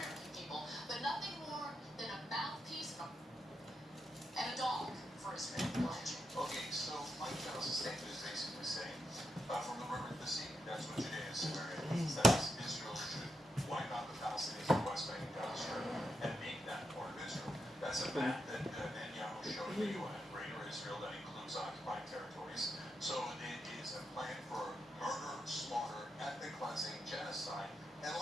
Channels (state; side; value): normal; both; correlation 0.83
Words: people, but nothing more than a mouthpiece and a dog for Israel. Okay, so Mike Pence's statement is basically saying, from the river to the sea, that's what Judea and Samaria means. That is, Israel should wipe out the Palestinians in the West Bank and Gaza Strip and make that part of Israel. That's a map that Netanyahu showed the UN, Greater Israel, that includes occupied territories. So it is a plan for murder, slaughter, ethnic cleansing, genocide, and